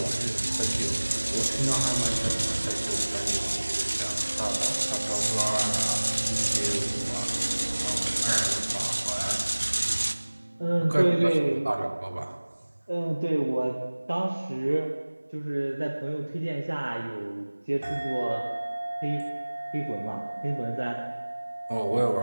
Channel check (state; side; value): inverted; both; correlation -1.00